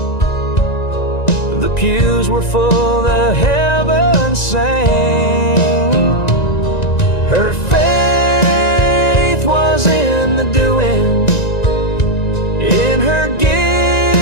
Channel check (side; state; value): right; late; 1.9 ms